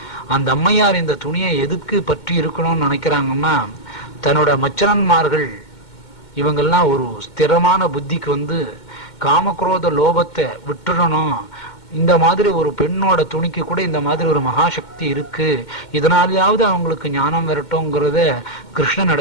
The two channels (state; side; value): late; right; 2.2 ms